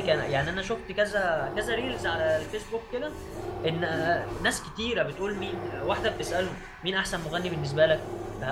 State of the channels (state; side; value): identical; both; correlation 1.00